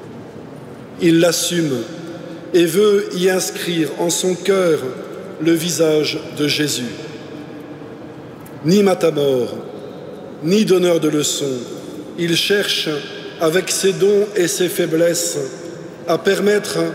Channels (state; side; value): identical; both; correlation 1.00